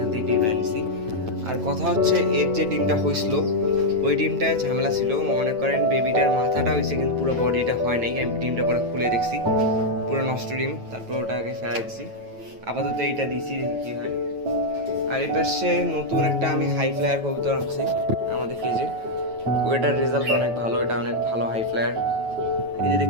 থেকে ডিমটা নিয়েছি। আর কথা হচ্ছে এর যে ডিমটা হয়েছিল ওই ডিমটায় ঝামেলা ছিল। মনে করেন বেবিটার মাথাটা হয়েছে কিন্তু পুরো বডিটা হয় নাই। আমি ডিমটা পরে খুলে দেখছি, পুরো নষ্ট ডিম। তারপর ওটাকে ফেলাই দিচ্ছি, আপাতত এইটা দিচ্ছি, দেখি কী হয়। আর এই পাশে নতুন একটা আমি হাই ফ্লায়ার কবুতর আনছি আমাদের কেজে, ওইটার রেজাল্ট অনেক ভালো, এটা অনেক ভালো হাই ফ্লায়ার। এই যে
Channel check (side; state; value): left; late; 9.1 ms